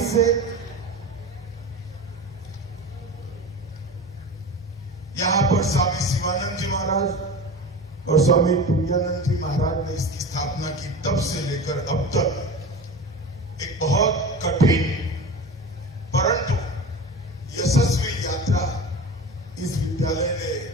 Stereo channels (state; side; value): normal; both; correlation 0.31